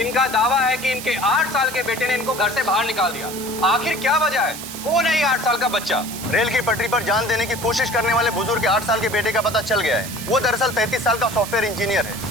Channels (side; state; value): right; noise; hiss, 10 dB below the sound